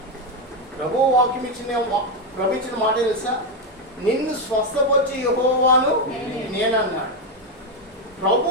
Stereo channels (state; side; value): normal; both; correlation 0.07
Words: ప్రభు వాక్యం ఇచ్చిన మాట తెలుసా? నిన్ను స్వస్థపరిచే యెహోవాను నేనన్నాడు. ప్రభు